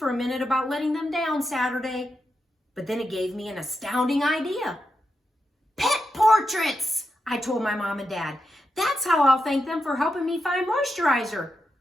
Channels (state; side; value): normal; both; correlation 0.86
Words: a minute about letting them down Saturday. But then it gave me an astounding idea. "Pet portraits," I told my mom and dad. "That's how I'll thank them for helping me find moisturizer.